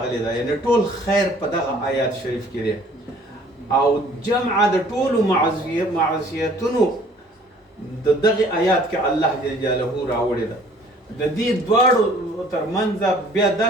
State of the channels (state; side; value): normal; both; correlation 0.54